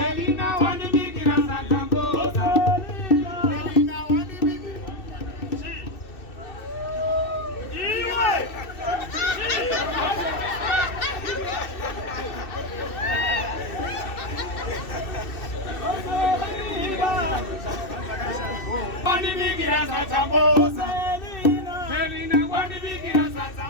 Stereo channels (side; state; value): right; late; 2.6 ms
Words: wandibikira satamboza. Selina wandibikira. Iwe. Wandibikira satamboza. Selina wandibikira